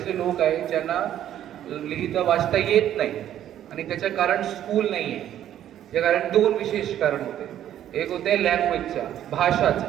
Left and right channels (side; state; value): left; quieter; 11.3 dB